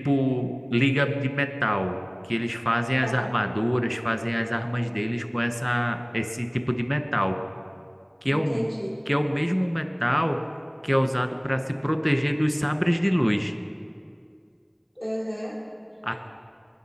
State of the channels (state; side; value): identical; both; correlation 1.00